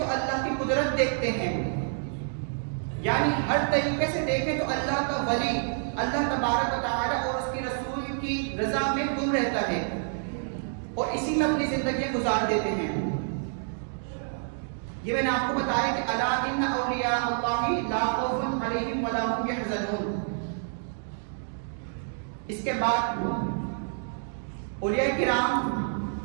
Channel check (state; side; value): silent; left; digital silence